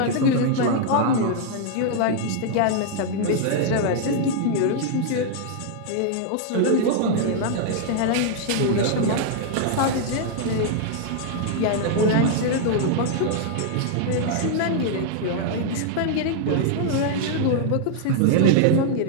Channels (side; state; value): both; different; correlation 0.00